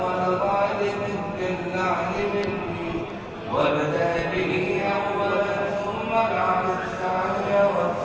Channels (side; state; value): both; identical; correlation 1.00